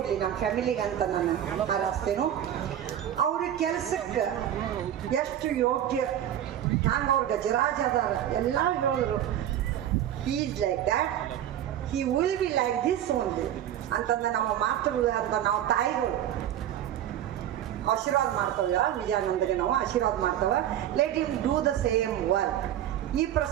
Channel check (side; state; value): left; quieter; 11.1 dB